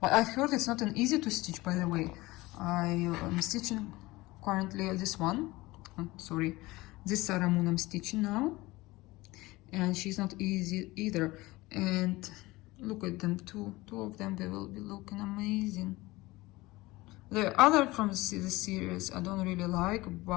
But I've heard it's not an easy to stitch, by the way. I am stitching currently this one. Sorry, this Sarah Moon I'm stitching now. And she's not easy either. And look at them, two of them, they will be looking amazing. The other from the series I don't really like,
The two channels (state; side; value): quieter; right; 20.4 dB